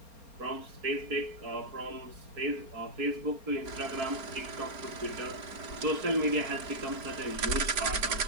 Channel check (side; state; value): left; late; 4.3 ms